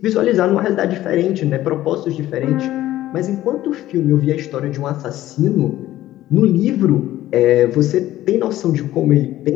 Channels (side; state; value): right; quieter; 14.5 dB